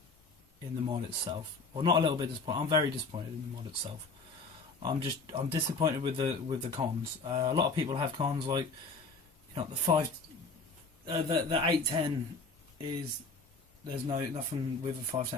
in the mod itself. Well, not a little bit disappointed. I'm very disappointed in the mod itself. I'm disappointed with the cons. A lot of people have cons like, you know, the 810 is, there's nothing with a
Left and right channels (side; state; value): right; quieter; 3.8 dB